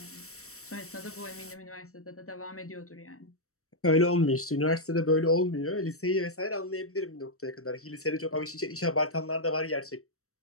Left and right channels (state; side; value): late; right; 0.64 ms